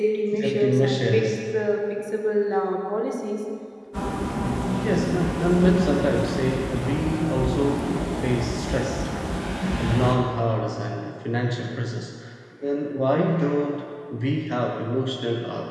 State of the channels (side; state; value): both; identical; correlation 1.00